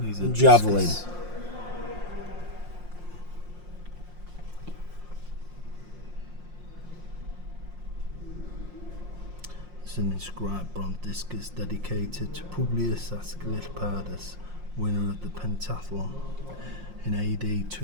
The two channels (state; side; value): late; left; 5.6 ms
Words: javelin. It's an inscribed bronze discus dedicated to Publius Asclepius, winner of the pentathlon in AD